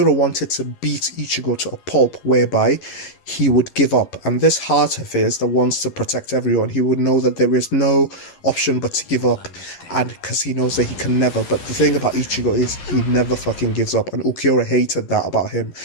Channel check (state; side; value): late; right; 11 ms